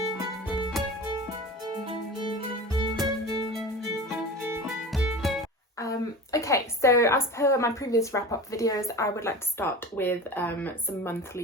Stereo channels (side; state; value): both; normal; correlation 0.33